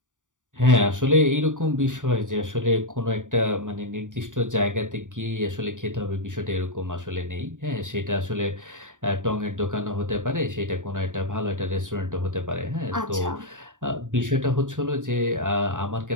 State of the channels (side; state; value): left; late; 0.87 ms